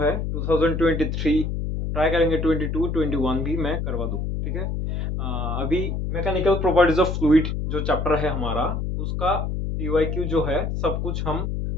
2023 ट्राई करेंगे। 22 21 भी मैं करवा दूँ, ठीक है। अभी मैकेनिकल प्रॉपर्टीज ऑफ फ्लूइड जो चैप्टर है हमारा, उसका पीवाईक्यू जो है सब कुछ हम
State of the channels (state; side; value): noise; left; hum, 2 dB below the sound